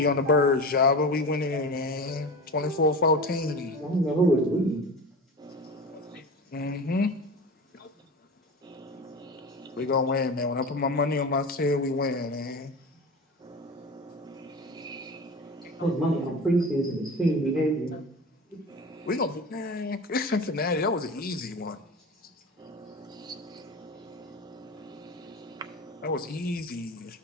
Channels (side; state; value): both; normal; correlation 0.31